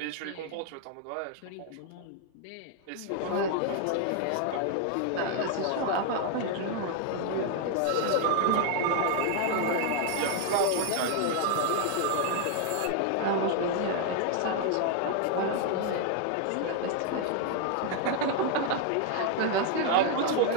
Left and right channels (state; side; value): different; both; correlation 0.00